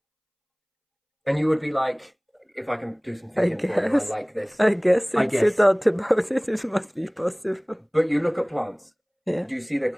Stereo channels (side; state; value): both; identical; correlation 1.00